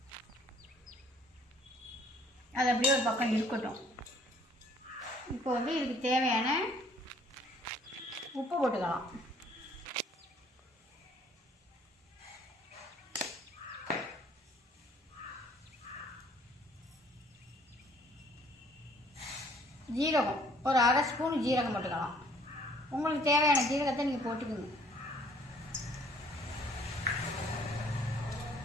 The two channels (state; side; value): normal; both; correlation 0.59